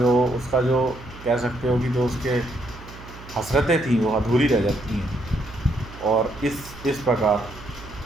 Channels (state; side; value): noise; right; hum, 17 dB below the sound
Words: जो कह सकते हो कि जो उसके हसरतें थी वो अधूरी रह जाती हैं। और इस प्रकार